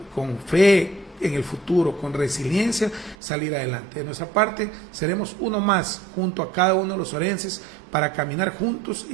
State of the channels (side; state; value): left; drops out; at 3.2 s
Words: con fe en el futuro, con resiliencia, salir adelante. De nuestra parte, seremos uno más junto a cada uno de los orenses para caminar juntos, y